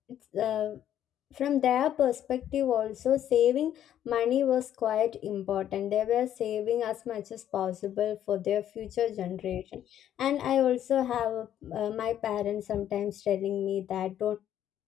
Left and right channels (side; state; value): right; quieter; 10.8 dB